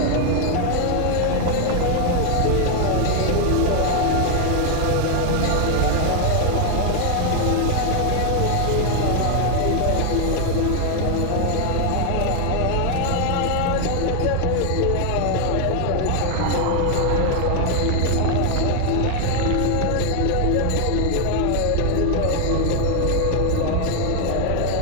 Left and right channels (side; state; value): both; different; correlation 0.00